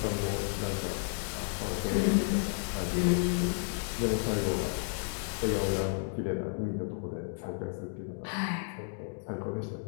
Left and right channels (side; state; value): right; silent; 56 dB below the other